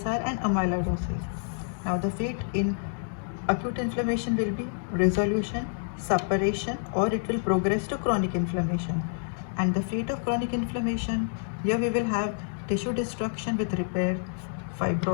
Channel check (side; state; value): right; silent; 59 dB below the other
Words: and amyloidosis. Now, the fate in acute inflammation will be resolution, suppuration, or it will progress to chronic inflammation. And the fate of chronic inflammation, here we will have tissue destruction with repair,